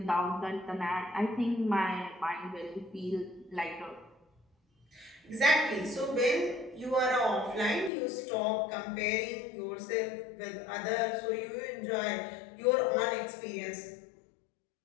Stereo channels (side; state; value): right; drops out; at 7.9 s